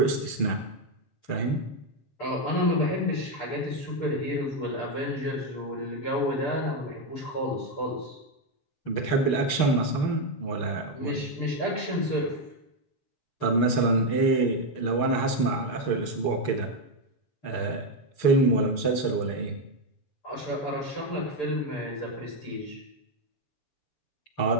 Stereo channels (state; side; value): late; right; 6.7 ms